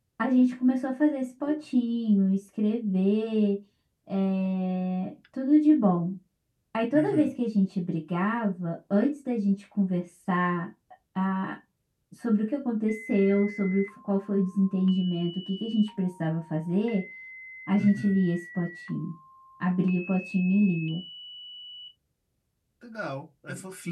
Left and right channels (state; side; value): identical; both; correlation 1.00